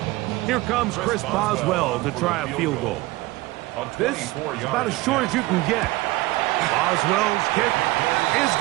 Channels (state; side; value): quieter; left; 19.7 dB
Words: Here comes Chris Boswell to try a field goal. This is about as short as you can get. Boswell's kick is